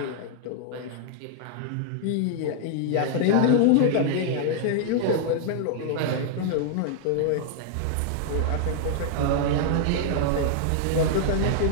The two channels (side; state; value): both; different; correlation -0.01